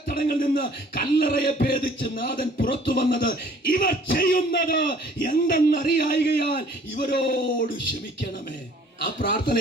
നിന്ന് കല്ലറയെ ഭേദിച്ച് നാഥൻ പുറത്തു വന്നത്. ഇവർ ചെയ്യുന്നത് എന്തെന്നറിയായികയാൽ ഇവരോട് ക്ഷമിക്കണമേ. ആ പ്രാർത്ഥന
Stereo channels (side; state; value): both; normal; correlation 0.54